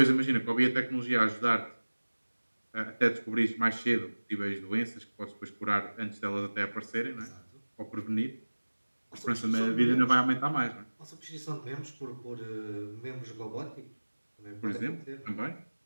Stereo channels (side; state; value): both; inverted; correlation -1.00